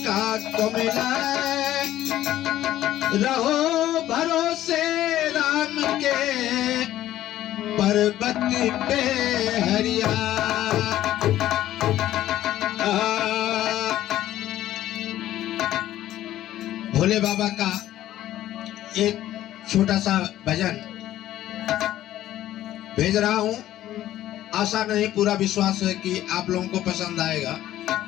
का कोमिला रहो भरोसे राम के पर्वत पे हरिया। भोले बाबा का एक छोटा सा भजन भेज रहा हूं। आशा नहीं पूरा विश्वास है कि आप लोगों को पसंद आएगा।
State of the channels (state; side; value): quieter; right; 13.4 dB